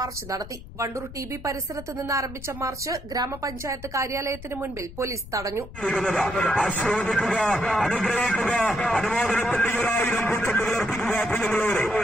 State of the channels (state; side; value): noise; left; rumble, 15 dB below the sound